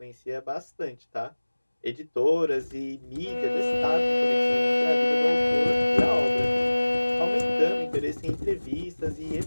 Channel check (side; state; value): both; inverted; correlation -1.00